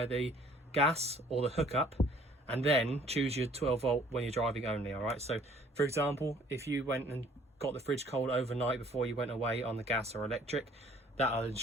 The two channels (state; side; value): normal; both; correlation 0.57